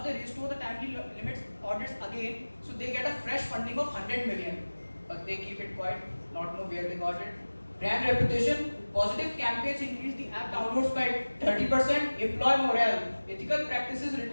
they restore the timely limits audits again, so they get a fresh funding of 100 million, but they keep it quiet, not know where they got it. Brand reputation, positive campaigns increase the app downloads by 30%, employee morale, ethical practices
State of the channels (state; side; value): inverted; both; correlation -1.00